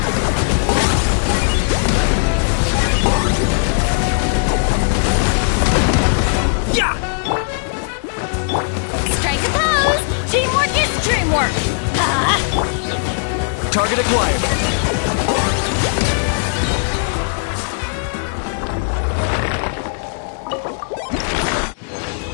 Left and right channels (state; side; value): silent; right; digital silence